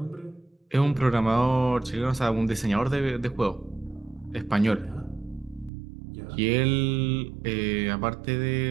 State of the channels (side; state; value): left; drops out; at 5.7 s